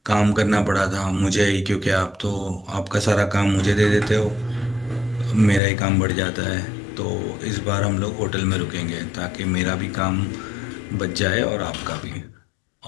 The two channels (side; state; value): right; drops out; at 5.6 s